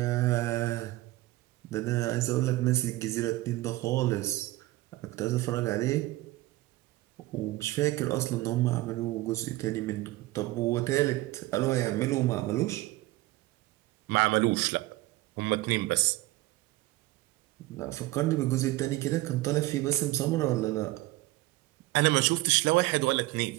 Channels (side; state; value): left; quieter; 18.2 dB